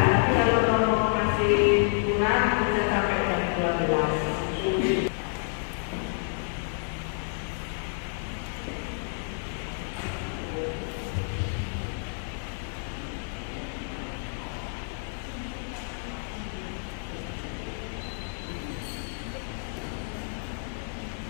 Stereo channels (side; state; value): right; silent; 59 dB below the other